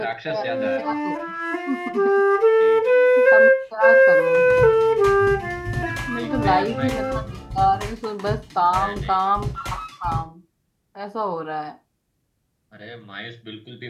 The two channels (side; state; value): both; identical; correlation 1.00